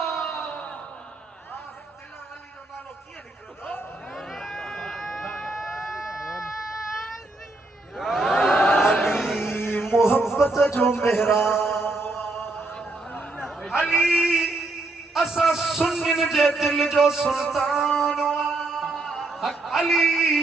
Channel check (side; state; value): left; quieter; 3.0 dB